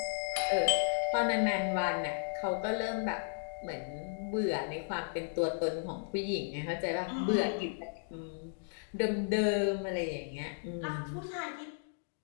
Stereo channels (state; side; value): silent; right; digital silence